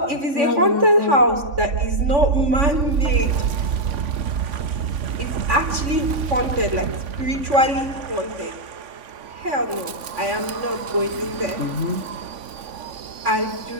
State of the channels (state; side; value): late; left; 3.5 ms